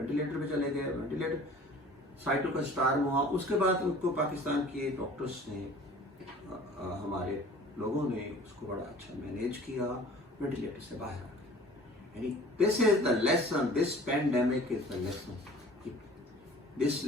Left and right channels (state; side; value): normal; both; correlation 0.47